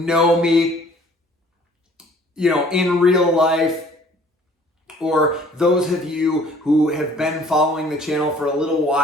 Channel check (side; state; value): both; normal; correlation 0.55